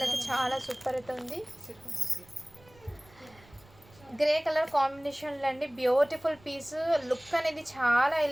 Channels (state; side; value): noise; right; rumble, 26 dB below the sound